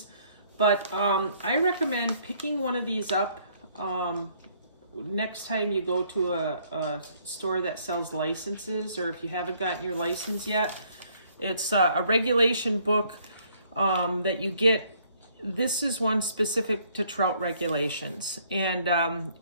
but I recommend picking one of these up next time you go to a store that sells licenses, or if you haven't gotten your license yet. It's a regulation book that you get. This is one specific to trout regulations. And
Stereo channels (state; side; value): inverted; both; correlation -0.65